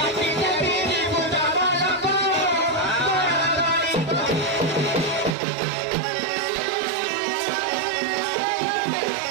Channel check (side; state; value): left; drops out; at 5.4 s